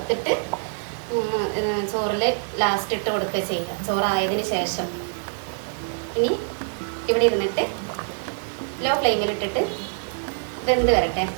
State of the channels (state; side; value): silent; left; 62 dB below the other